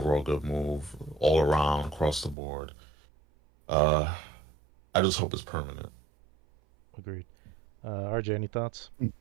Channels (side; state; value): left; drops out; at 2.4 s